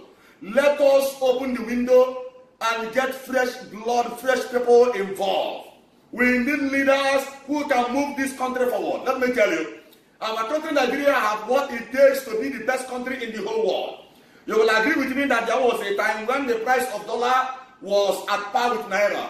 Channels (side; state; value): both; identical; correlation 1.00